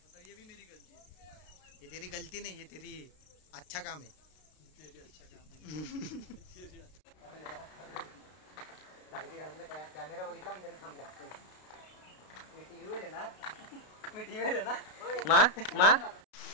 ये भी मेरी गलती है. ये तेरी गलती नहीं, ये तेरी अच्छा काम है. कॅमेरा बघितला आणि त्यांनी थांबला. मी टीव्हीवर आहे ना.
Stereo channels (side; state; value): right; late; 32 ms